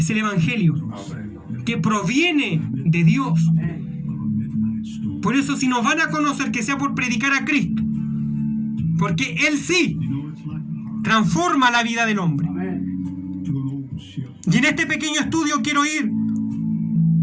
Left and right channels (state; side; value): identical; both; correlation 1.00